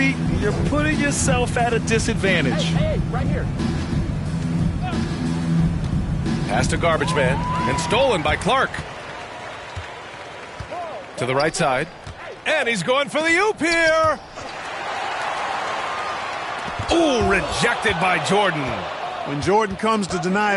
you're putting yourself at a disadvantage. Hey, right here. Pass to Garbage Man, and stolen by Clark. To the right side, and he's going for the oop here. Ooh, rejected by Jordan. When Jordan comes to deny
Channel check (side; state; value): both; identical; correlation 1.00